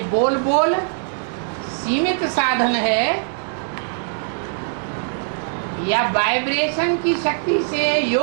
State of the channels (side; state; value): left; silent; digital silence